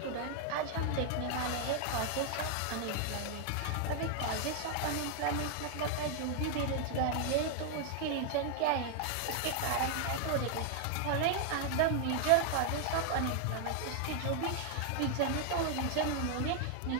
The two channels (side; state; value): both; different; correlation 0.00